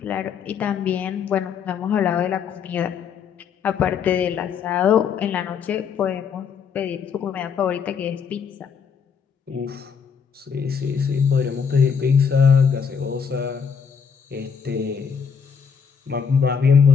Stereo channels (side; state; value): right; quieter; 6.6 dB